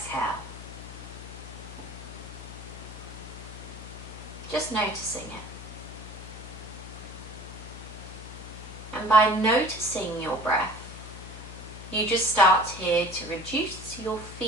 Just noticing it. And by noticing your breath, you just start here to reduce your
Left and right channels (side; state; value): left; noise; hum, 12 dB below the sound